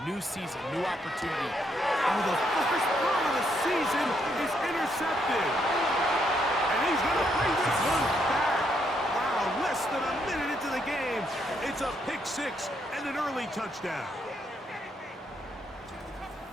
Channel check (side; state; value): both; normal; correlation 0.75